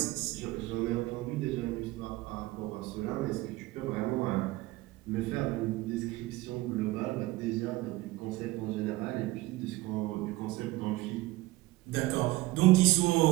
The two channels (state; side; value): quieter; left; 19.2 dB